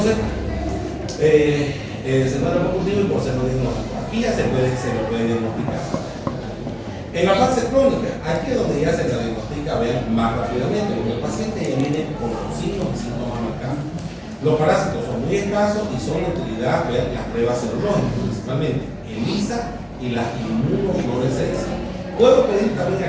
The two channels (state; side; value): identical; both; correlation 1.00